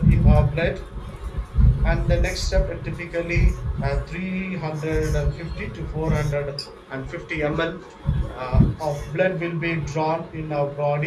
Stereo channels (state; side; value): identical; both; correlation 1.00